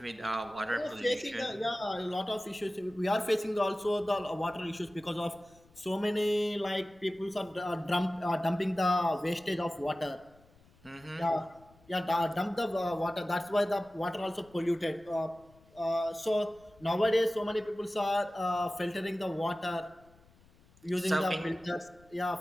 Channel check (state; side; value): noise; left; rumble, 28 dB below the sound